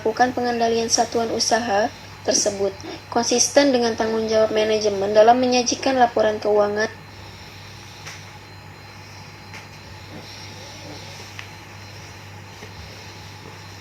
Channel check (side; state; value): both; identical; correlation 1.00